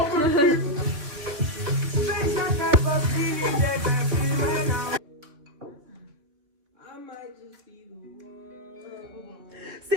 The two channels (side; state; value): left; late; 3.7 ms